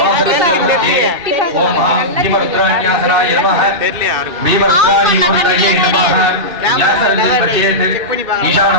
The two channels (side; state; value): left; late; 2.3 ms